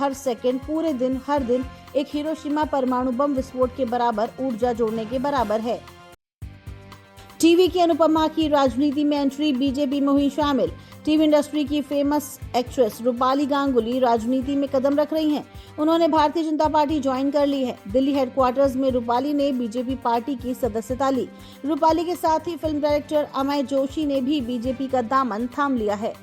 सेकंड, पूरे दिन, हर दिन एक हिरोशिमा परमाणु बम विस्फोट के बराबर ऊर्जा जोड़ने के बराबर है। टीवी की अनुपमा की राजनीति में एंट्री, बीजेपी में हुई शामिल। टीवी इंडस्ट्री की फेमस एक्ट्रेस रूपाली गांगुली राजनीति में कदम रख रही हैं। उन्होंने भारतीय जनता पार्टी ज्वाइन कर ली है। दिल्ली हेडक्वार्टर्स में रूपाली ने बीजेपी पार्टी की सदस्यता ली। रूपाली के साथ ही फिल्म डायरेक्टर अमय जोशी ने भी बीजेपी का दामन थाम लिया है।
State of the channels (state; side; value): identical; both; correlation 1.00